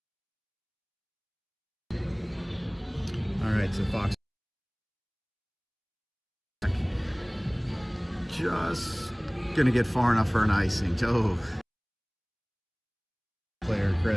All right, so Fox just gonna get far enough for an icing. Oh. Player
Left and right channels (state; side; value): identical; both; correlation 1.00